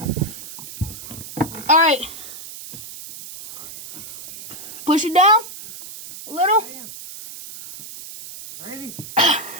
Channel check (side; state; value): right; noise; hiss, 13 dB below the sound